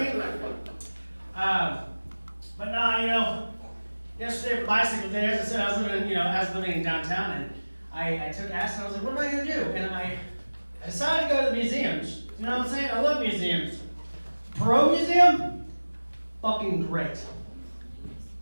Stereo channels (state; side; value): inverted; both; correlation -1.00